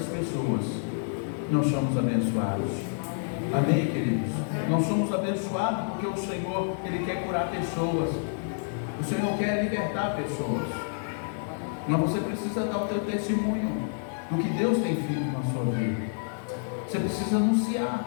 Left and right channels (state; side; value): silent; right; 59 dB below the other